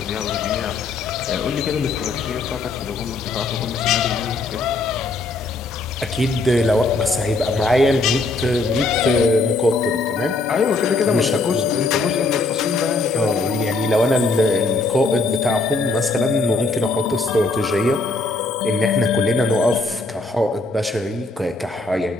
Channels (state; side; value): quieter; right; 3.3 dB